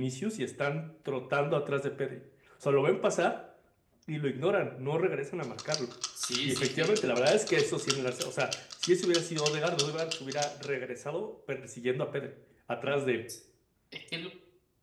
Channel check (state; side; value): identical; both; correlation 1.00